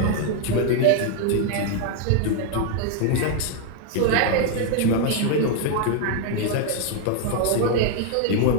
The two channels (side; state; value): both; different; correlation 0.00